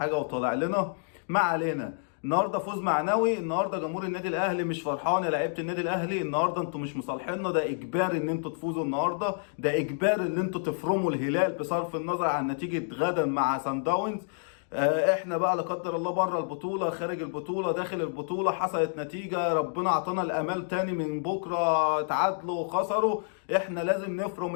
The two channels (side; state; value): right; silent; digital silence